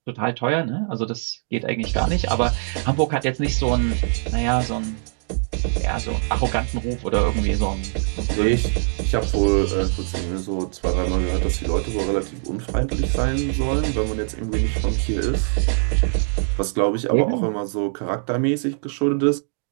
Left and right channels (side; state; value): left; silent; digital silence